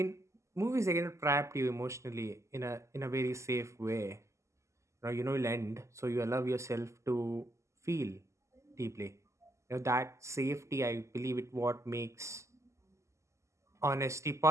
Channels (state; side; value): late; left; 0.14 ms